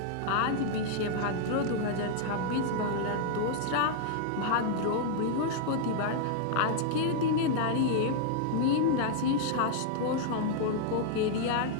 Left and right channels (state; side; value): different; both; correlation -0.01